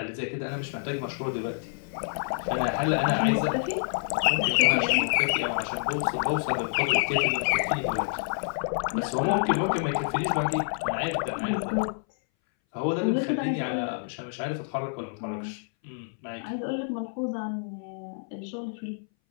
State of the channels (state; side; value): silent; right; 59 dB below the other